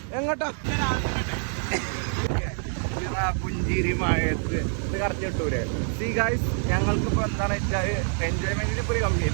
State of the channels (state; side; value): silent; left; 56 dB below the other